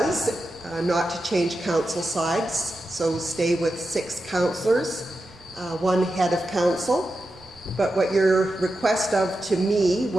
not to change council sides, so stay with 6 councillors, 1 head of council. But what your request of to me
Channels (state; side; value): noise; right; rumble, 26 dB below the sound